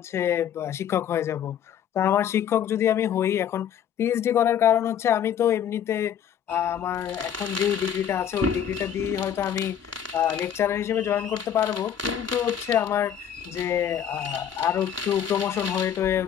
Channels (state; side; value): quieter; right; 9.1 dB